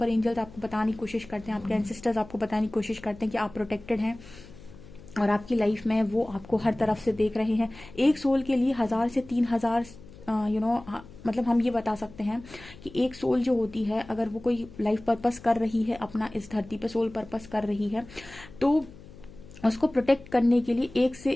एंजल्स आपको बताने की कोशिश करते हैं, आपके एंसेस्टर्स आपको बताने की कोशिश करते हैं कि आप प्रोटेक्टेड हैं, और आपकी लाइफ में वो आपको हर तरफ से देख रहे हैं। एक सोल के लिए 1000 से 3000 मतलब हम ये बता सकते हैं कि एक सोल जो होती है, अगर वो कोई लाइफ पर्पस कर रही है अपना, इस धरती पे सोल पर्पस कर रही है, तो उसको प्रोटेक्ट करने के लिए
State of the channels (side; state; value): left; noise; hum, 19 dB below the sound